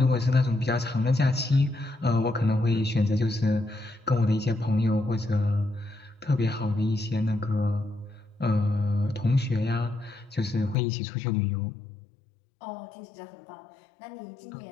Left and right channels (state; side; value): drops out; right; at 10.8 s